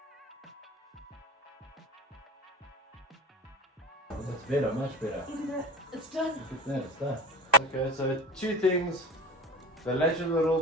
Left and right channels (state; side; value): normal; both; correlation 0.33